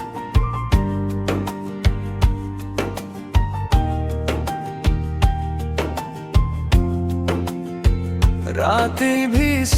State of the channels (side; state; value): both; identical; correlation 1.00